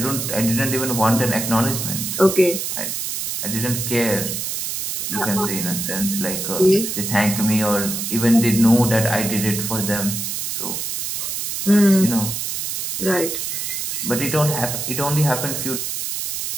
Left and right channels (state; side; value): noise; right; hiss, 3 dB below the sound